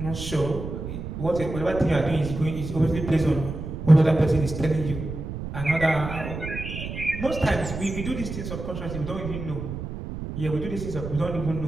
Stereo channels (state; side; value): noise; right; rumble, 7 dB below the sound